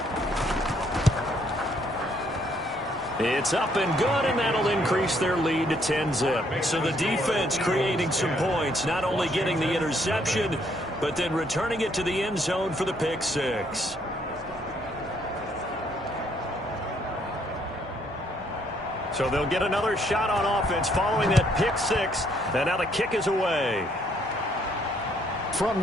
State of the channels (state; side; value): normal; both; correlation 0.69